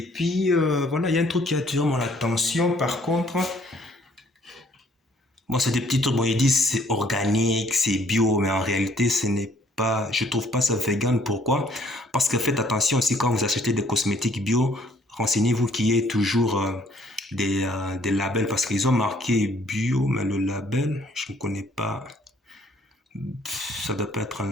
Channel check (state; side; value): normal; both; correlation 0.62